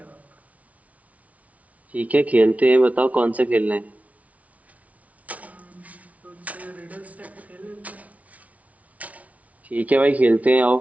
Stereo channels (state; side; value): late; left; 0.068 ms